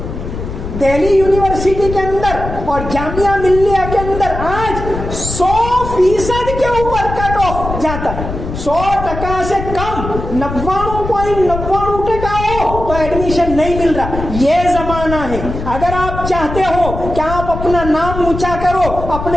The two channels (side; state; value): left; noise; rumble, 7 dB below the sound